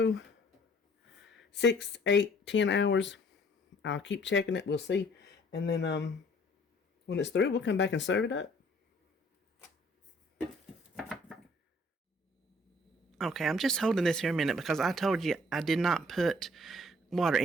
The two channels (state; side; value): normal; both; correlation 0.58